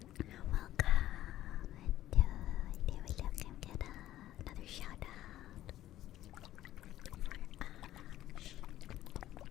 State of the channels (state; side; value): quieter; right; 13.6 dB